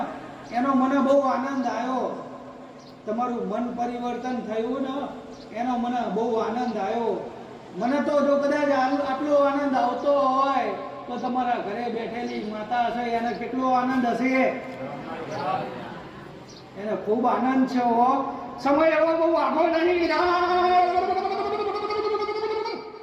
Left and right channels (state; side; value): identical; both; correlation 1.00